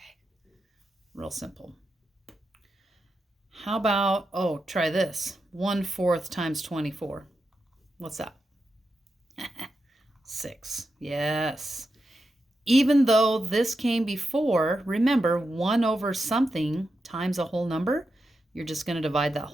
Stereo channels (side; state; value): both; normal; correlation 0.88